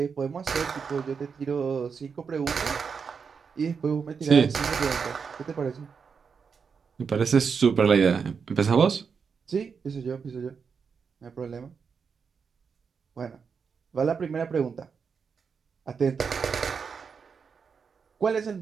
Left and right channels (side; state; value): left; quieter; 5.9 dB